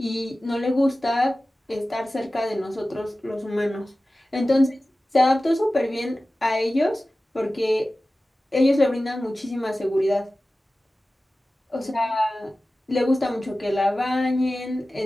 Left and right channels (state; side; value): normal; both; correlation 0.96